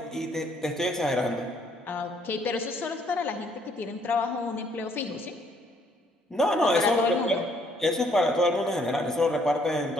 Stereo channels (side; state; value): both; normal; correlation 0.66